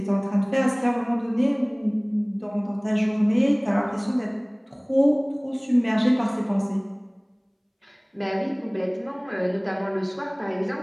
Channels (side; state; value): both; identical; correlation 1.00